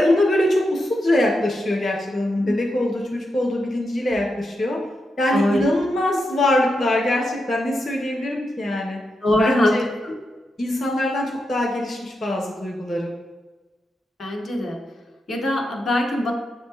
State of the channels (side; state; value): both; normal; correlation 0.86